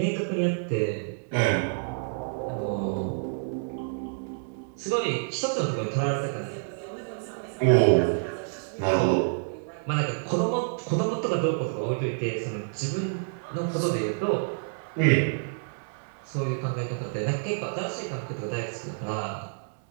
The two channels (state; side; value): silent; left; 59 dB below the other